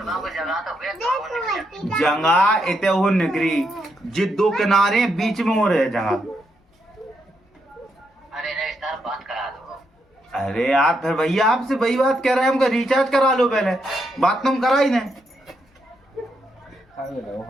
जगह इतने हो निकरी जी दो किनारे बीच में हो रहे जगह। अरे यार फिर भैया आपसे वही बात कह रहे हैं, हमको रिचार्ज करा लो पहले, बात तुम करा ही नहीं।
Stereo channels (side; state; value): both; normal; correlation 0.80